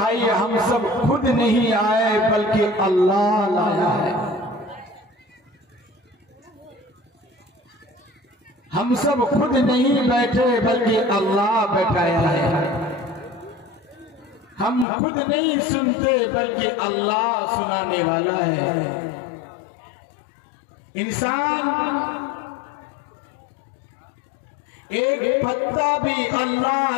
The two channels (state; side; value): drops out; right; at 14.9 s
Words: हम सब खुद नहीं आए बल्कि अल्लाह लाया है। हम सब खुद नहीं बैठे बल्कि अल्लाह बैठाया है। हम खुद नहीं सुनते बल्कि अल्लाह सुनाने वाला है। इंसान एक पत्ता भी अल्लाह